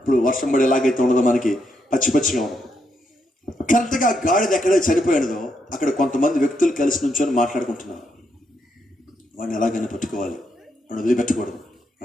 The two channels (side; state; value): both; normal; correlation 0.79